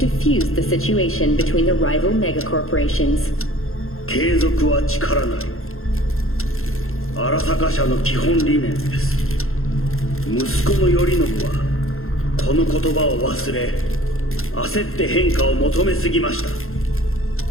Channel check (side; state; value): right; late; 0.61 ms